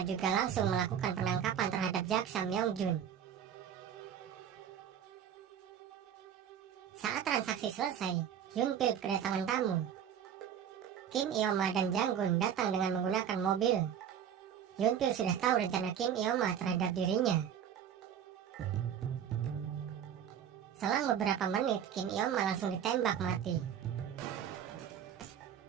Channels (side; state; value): left; quieter; 8.9 dB